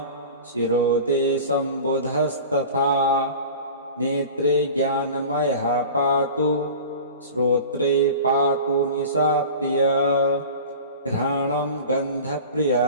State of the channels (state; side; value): inverted; both; correlation -0.37